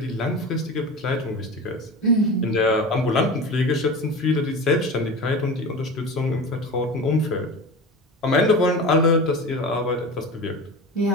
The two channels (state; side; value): normal; both; correlation 0.30